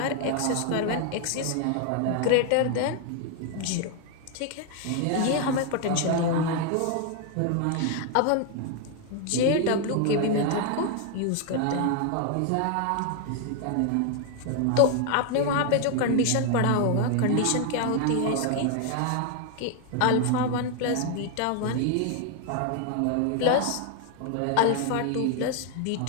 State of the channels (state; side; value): different; both; correlation 0.00